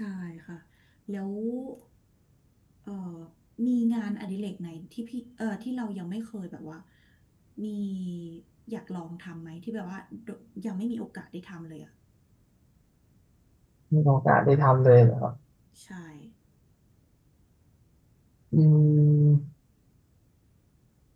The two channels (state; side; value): identical; both; correlation 1.00